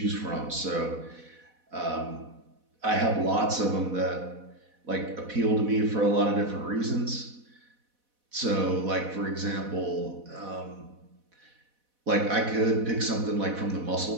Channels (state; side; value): late; left; 4.1 ms